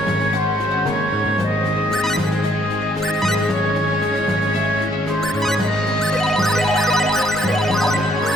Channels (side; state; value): both; normal; correlation 0.68